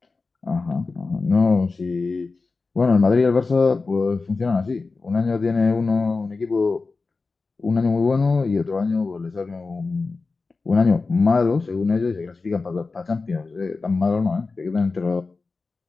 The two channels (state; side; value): quieter; right; 4.0 dB